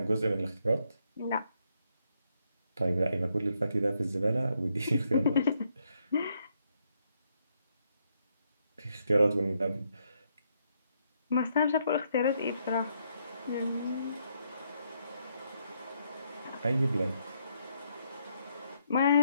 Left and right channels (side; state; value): both; inverted; correlation -0.76